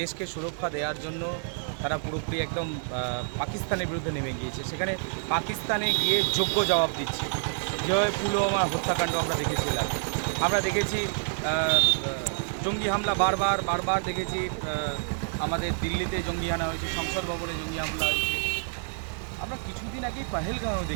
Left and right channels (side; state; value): left; silent; digital silence